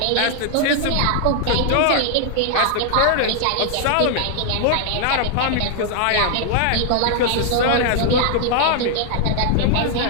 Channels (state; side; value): different; both; correlation 0.00